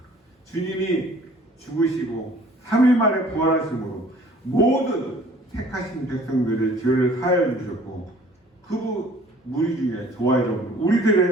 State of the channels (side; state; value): both; normal; correlation 0.53